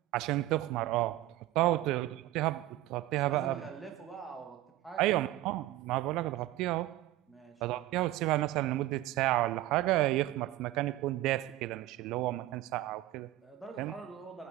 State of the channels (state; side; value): quieter; left; 15.7 dB